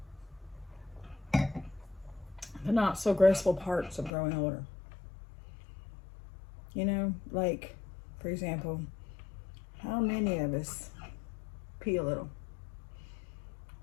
The not so graceful parts of growing older. You know, like, for example, how many of us pee a little?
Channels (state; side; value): drops out; right; at 4.1 s